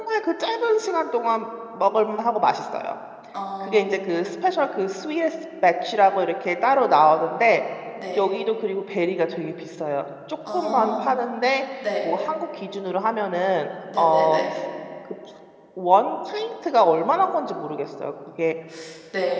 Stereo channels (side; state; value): both; identical; correlation 1.00